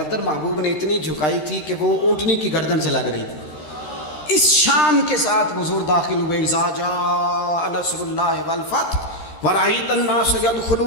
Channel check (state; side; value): late; right; 13 ms